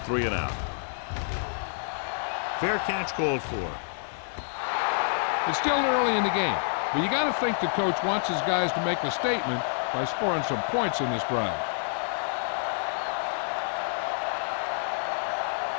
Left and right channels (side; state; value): right; silent; digital silence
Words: Fair catch called for. It's still early in the game, but you got to think the coach wants his guys to make a statement by scoring some points in this drive.